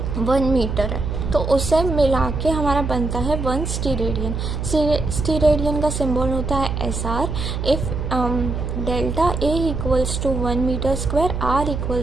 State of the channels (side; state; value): right; noise; hum, 3 dB below the sound